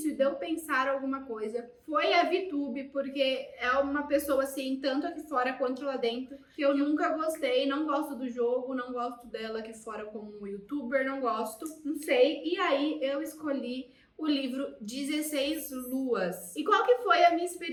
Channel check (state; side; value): identical; both; correlation 1.00